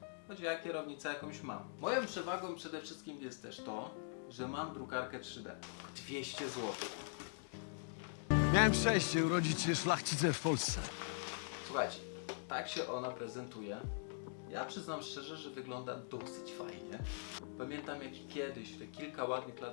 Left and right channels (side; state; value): right; silent; digital silence